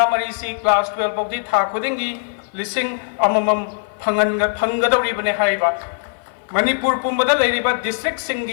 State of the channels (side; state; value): right; silent; 57 dB below the other